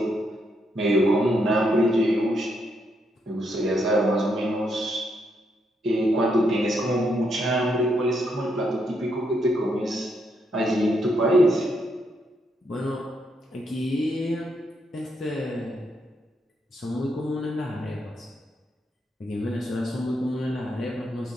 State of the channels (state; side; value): normal; both; correlation 0.78